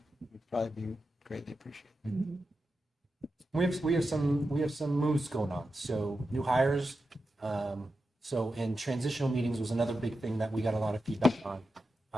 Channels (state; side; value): normal; both; correlation 0.90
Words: would probably be greatly appreciated. We have some moves going on. So new hires. So in transitional meetings was another big thing that we got a lot of feedback on.